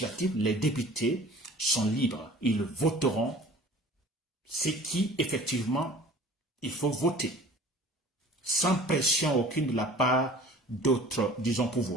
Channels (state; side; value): normal; both; correlation 0.46